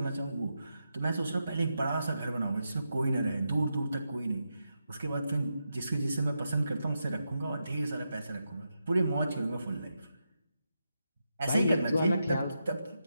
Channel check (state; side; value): inverted; both; correlation -0.86